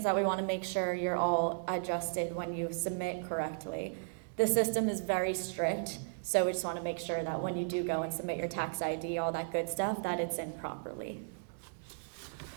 that we want to make sure you're all adjusted when you submit correctly. The system is very strict, so we just want to make sure that when you do go and submit your tax ID, all that good stuff, that it's in properly.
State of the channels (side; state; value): left; silent; digital silence